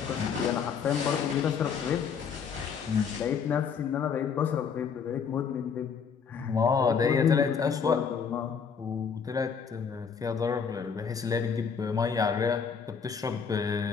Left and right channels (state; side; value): quieter; right; 6.4 dB